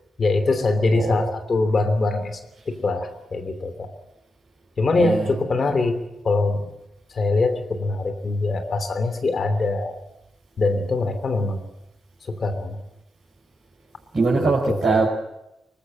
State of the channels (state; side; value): normal; both; correlation 0.86